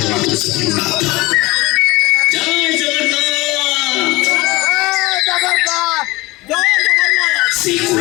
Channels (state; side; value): quieter; right; 21.7 dB